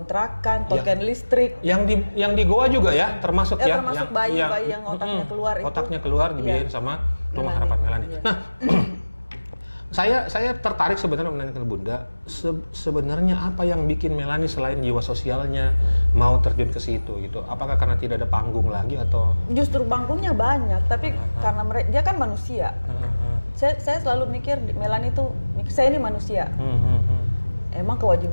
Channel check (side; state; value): both; inverted; correlation -1.00